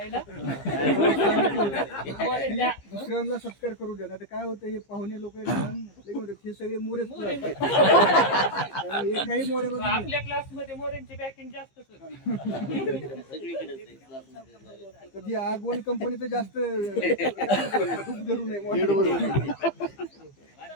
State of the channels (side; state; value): right; late; 15 ms